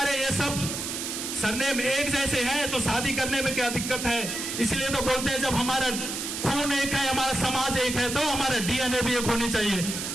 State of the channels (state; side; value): noise; right; hiss, 5 dB below the sound